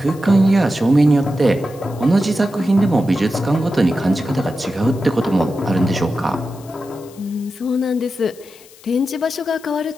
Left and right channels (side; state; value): left; noise; hiss, 24 dB below the sound